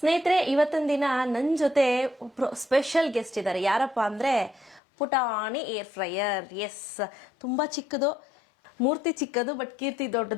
ಸ್ನೇಹಿತರೆ, ಇವತ್ತಿನ ದಿನ ನನ್ನ ಜೊತೆ ಒಬ್ರು ಸ್ಪೆಷಲ್ ಗೆಸ್ಟ್ ಇದ್ದಾರೆ. ಯಾರಪ್ಪ ಅಂದ್ರೆ ಪುಟಾಣಿ ಏರ್ ಫ್ರೈಯರ್. ಎಸ್, ತುಂಬಾ ಚಿಕ್ಕದು, ಮೂರ್ತಿ ಚಿಕ್ಕದು ಬಟ್ ಕೀರ್ತಿ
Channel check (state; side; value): drops out; right; at 4.8 s